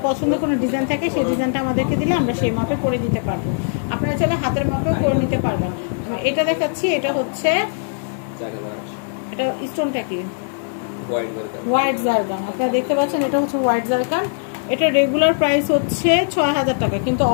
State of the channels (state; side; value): silent; right; digital silence